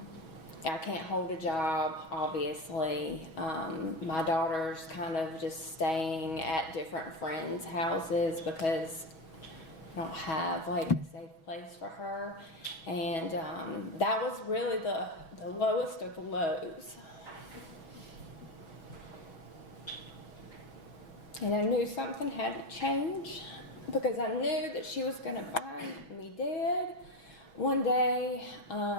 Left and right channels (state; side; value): late; right; 6.2 ms